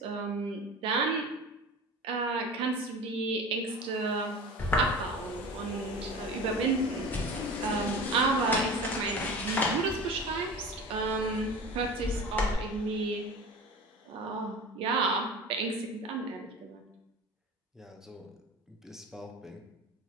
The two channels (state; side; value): normal; both; correlation 0.34